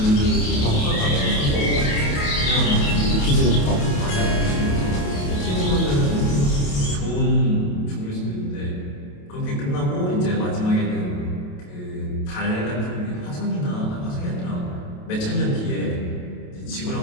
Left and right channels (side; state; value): right; late; 28 ms